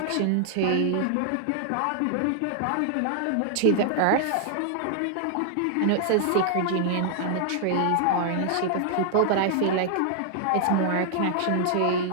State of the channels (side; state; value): both; different; correlation -0.01